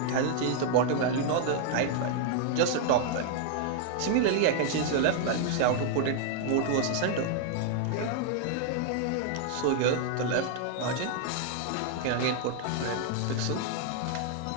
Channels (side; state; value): both; different; correlation 0.00